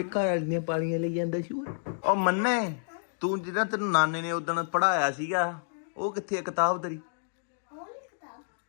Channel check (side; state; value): right; silent; digital silence